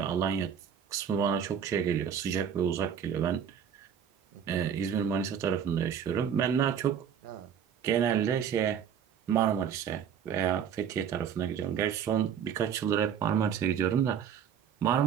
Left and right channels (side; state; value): left; quieter; 8.1 dB